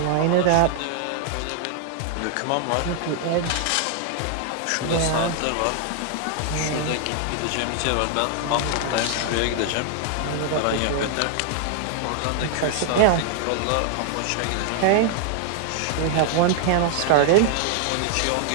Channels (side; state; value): both; different; correlation 0.00